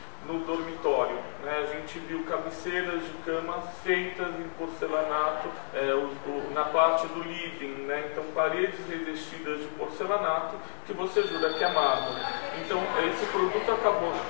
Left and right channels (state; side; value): silent; right; digital silence